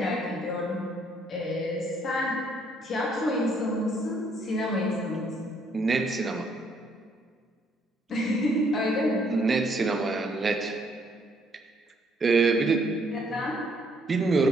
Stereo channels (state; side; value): normal; both; correlation 0.68